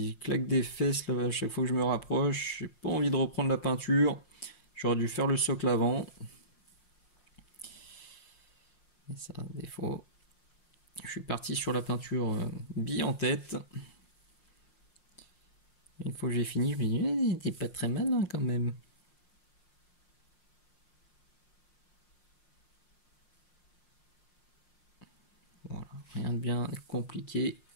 claque des fesses là, à chaque fois que je me rapproche. J'ai pas envie de reprendre la peinture. J'aurais dû faire le socle avant. Et ça, défaut. Je suis parti sur la peinture bille en tête. Une fois que j'ai fini, je me dis, t'es pas très malin quand même. Voilà, rien de bien compliqué.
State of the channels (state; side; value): late; right; 5.6 ms